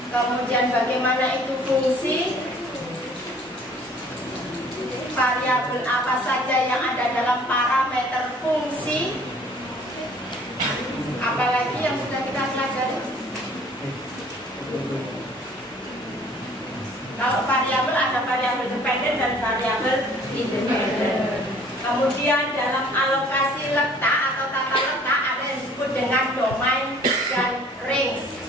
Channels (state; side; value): normal; both; correlation 0.54